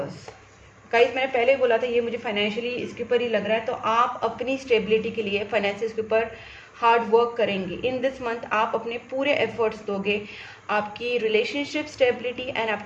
Guys मैंने पहले ही बोला था ये मुझे फाइनेंशियली इसके ऊपर ही लग रहा है, तो आप अपनी स्टेबिलिटी के लिए फाइनेंसिस के ऊपर हार्ड वर्क करेंगे। इन दिस मंथ आप अपने पूरे एफर्ट्स दोगे आपकी रिलेशनशिप स्टेबिलिटी एंड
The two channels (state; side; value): identical; both; correlation 1.00